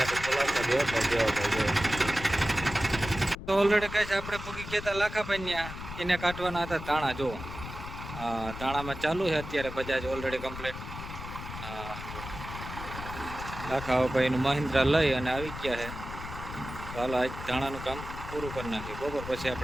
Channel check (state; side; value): noise; left; rumble, 10 dB below the sound